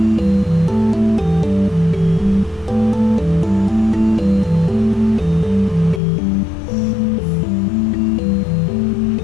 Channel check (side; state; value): right; drops out; at 6.0 s